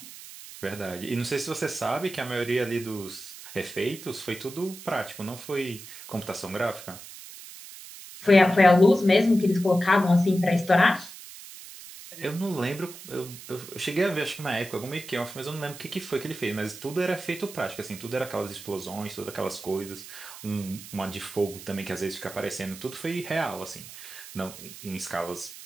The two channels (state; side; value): noise; right; hiss, 14 dB below the sound